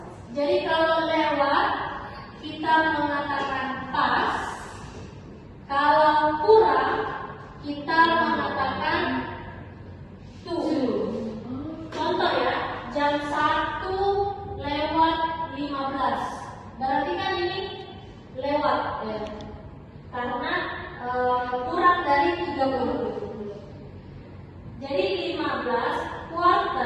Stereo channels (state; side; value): identical; both; correlation 1.00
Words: Jadi kalau lewat kita mengatakan pas, kalau kurang kita mengatakan to. Contoh ya, jam 1:15. Berarti kan ini lewat ya. Karena kurang dari 30. Jadi 15